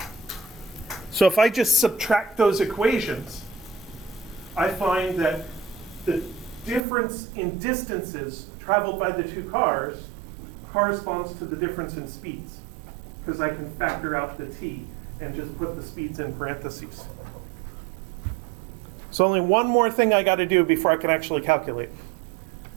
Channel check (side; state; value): left; drops out; at 6.8 s